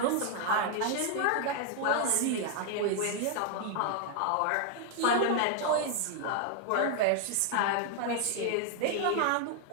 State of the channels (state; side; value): different; both; correlation 0.00